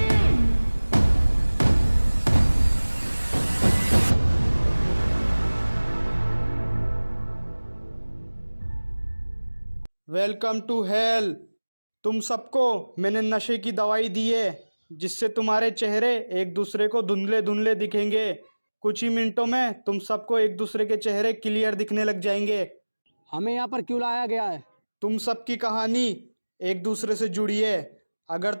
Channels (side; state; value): both; inverted; correlation -1.00